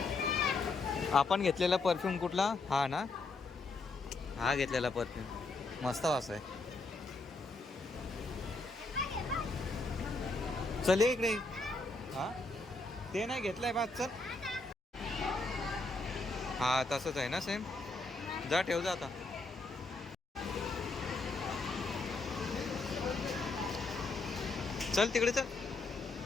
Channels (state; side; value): quieter; right; 3.4 dB